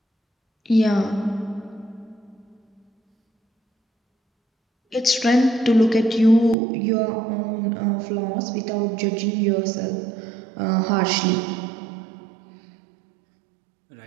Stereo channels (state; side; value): drops out; left; at 6.6 s